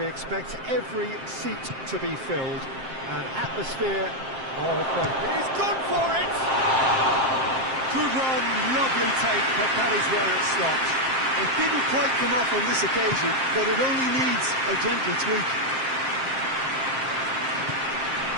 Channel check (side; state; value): left; late; 7.6 ms